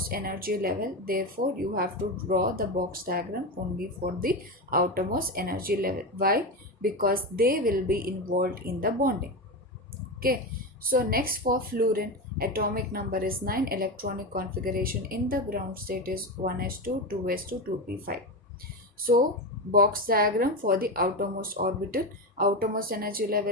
energy level. Therefore, you have to draw the box diagram only for the outermost energy level. Why? Because they will be involved in the bonding. Okay, so next for fluorine, atomic number is 9, electronic configuration in the ground state is 1s2, 2s2, 2p5. So box diagram for the outermost orbital, outermost energy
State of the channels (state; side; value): normal; both; correlation 0.17